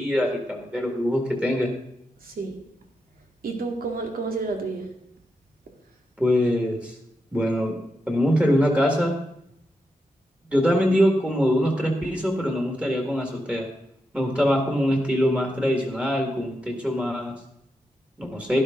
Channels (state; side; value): normal; both; correlation 0.86